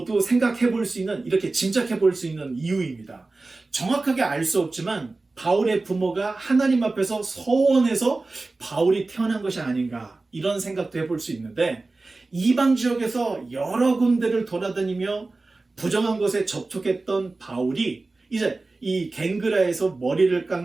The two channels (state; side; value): quieter; left; 3.4 dB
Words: 생각해 볼 수 있는 이렇게 짐작해 볼 수 있는 이유입니다. 정확하게 알 수 없지만 바울의 부모가 하나님 앞에서 서원해서 바울이 태어난 것이 아닌가 이런 생각도 해볼 수 있는데 이방 지역에서 여러 군데를 돌아다니며 부정한 것에 접촉했던 바울이 이제 이 겐그라에서 머리를